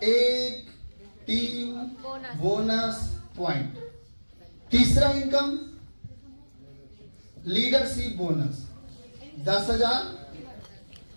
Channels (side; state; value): both; inverted; correlation -1.00